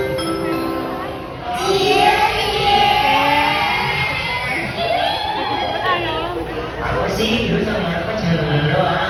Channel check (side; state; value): both; identical; correlation 1.00